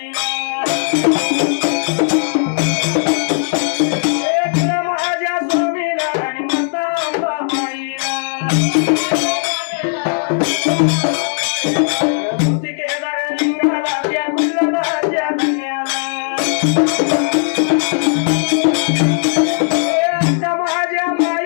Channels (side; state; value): right; silent; 68 dB below the other